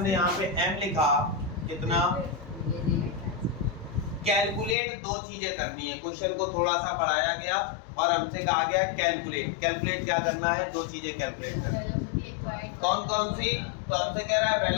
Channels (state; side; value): drops out; right; at 4.8 s